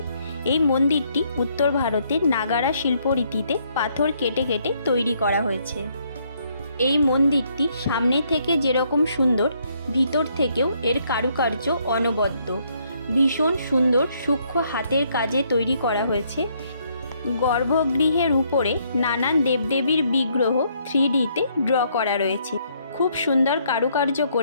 এই মন্দিরটি উত্তর ভারতের নাগারা শিল্পরীতিতে পাথর কেটে কেটে তৈরি করা হয়েছে। এই মন্দিরটি সামনে থেকে যেরকম সুন্দর, ভিতর থেকেও এর কারুকার্য অনবদ্য। ভীষণ সুন্দর সূক্ষ্ম হাতের কাজে তৈরি করা হয়েছে। গর্ভগৃহের উপরে নানান দেবদেবীর বিগ্রহ 3Dতে ড্র করা রয়েছে। খুব সুন্দর কারুকার্য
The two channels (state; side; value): inverted; both; correlation -0.70